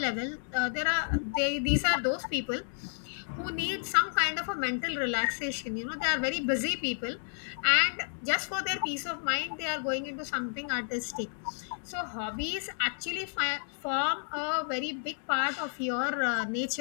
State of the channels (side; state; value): right; silent; digital silence